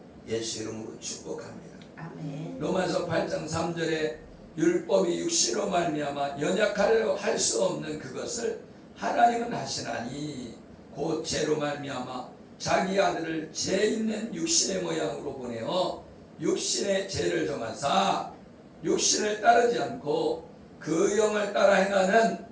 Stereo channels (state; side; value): identical; both; correlation 1.00